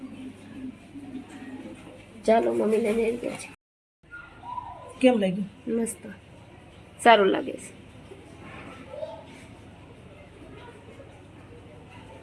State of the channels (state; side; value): identical; both; correlation 1.00